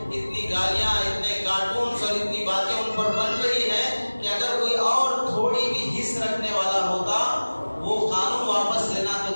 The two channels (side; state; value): both; inverted; correlation -1.00